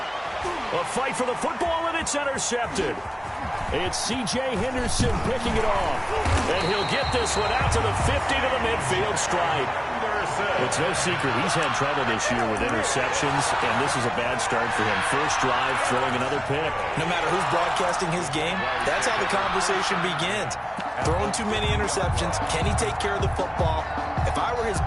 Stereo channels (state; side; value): identical; both; correlation 1.00